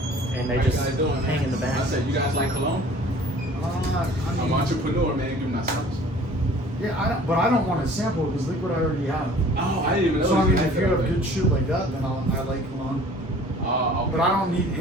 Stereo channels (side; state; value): both; normal; correlation 0.49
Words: and they How just you guys doing, hang man? in the back. I said, you guys like cologne? I'm an entrepreneur, man. Give me that service. Yeah, but I don't want to sample it because look what I already have. Oh, I didn't even know. So I mean, had if you that have already. good shit like that, then I like cologne. Okay. But I don't need